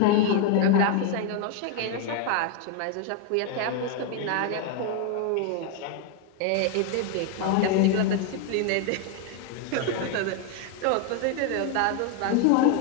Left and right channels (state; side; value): different; both; correlation 0.01